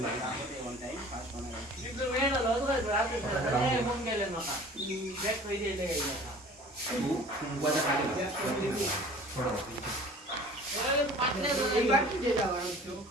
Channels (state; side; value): normal; both; correlation 0.46